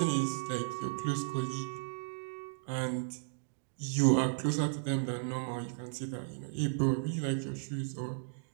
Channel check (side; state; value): left; silent; digital silence